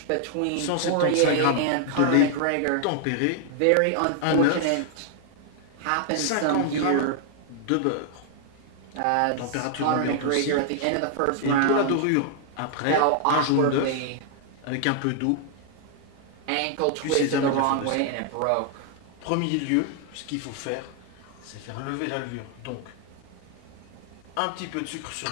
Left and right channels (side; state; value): both; different; correlation 0.00